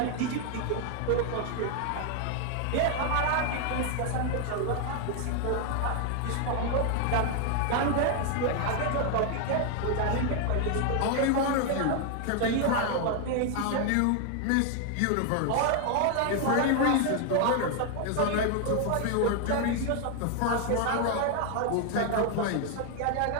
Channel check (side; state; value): both; different; correlation 0.00